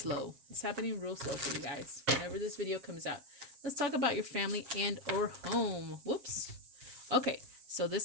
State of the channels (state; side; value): late; left; 7.4 ms